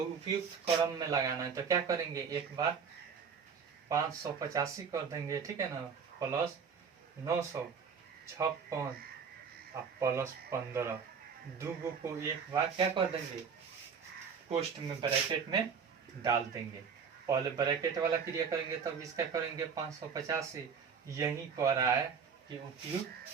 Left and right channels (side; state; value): left; quieter; 6.3 dB